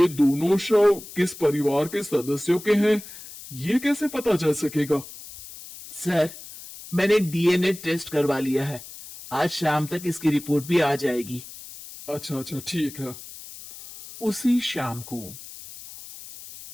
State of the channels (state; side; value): noise; left; hiss, 15 dB below the sound